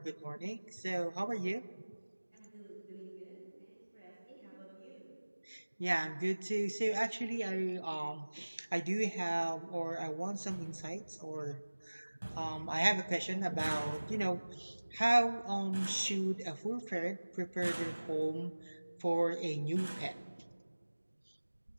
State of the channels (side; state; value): both; inverted; correlation -1.00